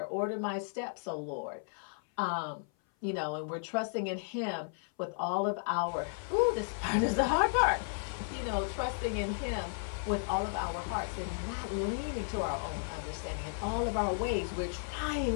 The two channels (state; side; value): silent; right; 55 dB below the other